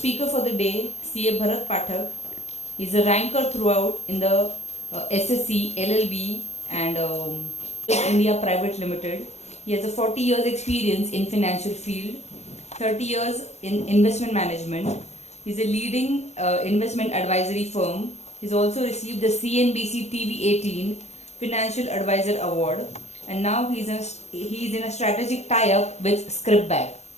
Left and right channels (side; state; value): right; late; 0.32 ms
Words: for the day, CA Bharat Phatak. He's a ranker throughout in the SSC, LLB and India Private Limited. He has a 40 years experience in financial field, 30 years in investment management. He's a leading investment advisory firm. He's also received the CNBC TV 18 Financial Advisor Award, and now he's in a strategic tie-up with